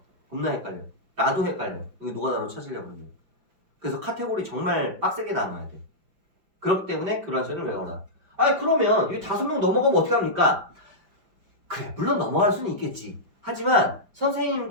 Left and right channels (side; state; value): left; late; 5.5 ms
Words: 겁나 헷갈려. 나도 헷갈려. 이거 노가다로 찾으려고 그러면. 그래서 카테고리 정말 빡세게 나눠야 돼. 그렇기 때문에 교란수열을 외워라. 아니 그러면 이 5명 넘어가면 어떻게 합니까? 그래 물론 넘어갈 수는 있겠지. 하지만